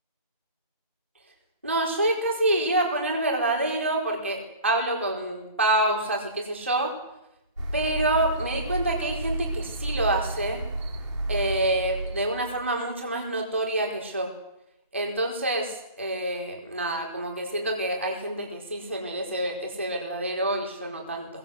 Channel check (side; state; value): both; inverted; correlation -0.41